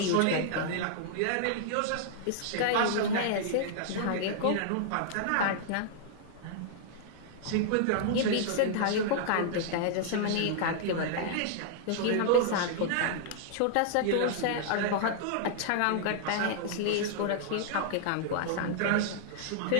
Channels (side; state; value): both; different; correlation -0.01